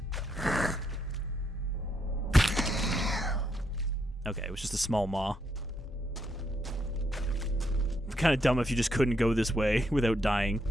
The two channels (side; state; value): both; normal; correlation 0.77